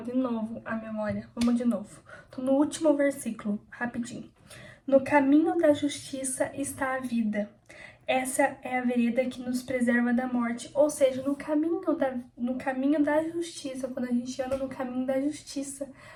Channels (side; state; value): both; identical; correlation 1.00